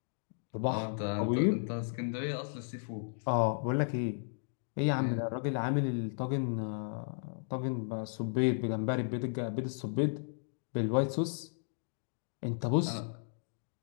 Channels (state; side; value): silent; right; digital silence